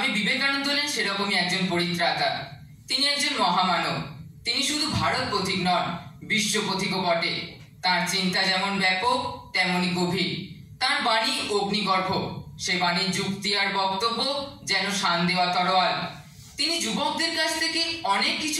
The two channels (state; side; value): identical; both; correlation 1.00